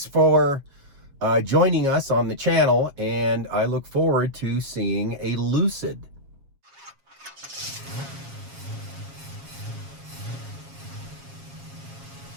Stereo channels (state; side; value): late; left; 7.3 ms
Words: for joining us on the channel, and I look forward to seeing a Lucid.